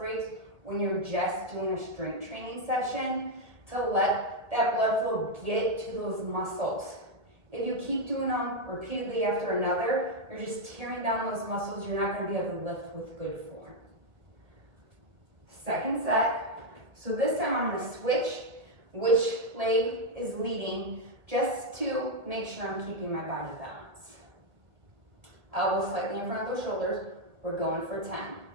when you're just doing a strength training session to let that blood flow get to those muscles. If you keep doing them repeatedly after another, you're just tearing down those muscles. You're not going to be able to lift with good form. Second set. So this time I'm going to switch which leg is leading just to make sure I'm keeping my body balanced. Elbows slightly in front of those shoulders. We're going for 10.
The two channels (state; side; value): late; left; 1.5 ms